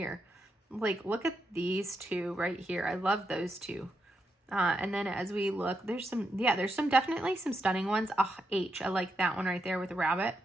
Like, look at these two right here. I love those two. And then as we look, there's some definitely some stunning ones. H, I like that one right there with the rabbit.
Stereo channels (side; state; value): both; normal; correlation 0.83